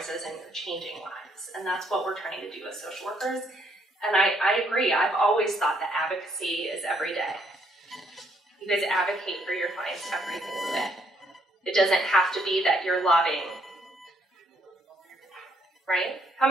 and you're changing lives. And that's what we're trying to do as social workers. And I agree, I've always thought that advocacy is every day. You guys advocate for your clients every single day. It doesn't have to be that you're lobbying. Right? How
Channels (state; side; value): normal; both; correlation 0.70